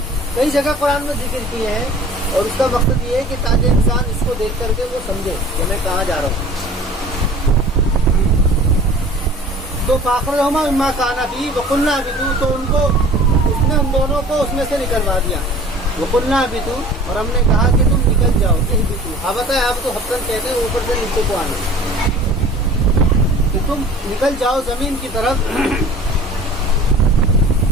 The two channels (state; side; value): normal; both; correlation 0.45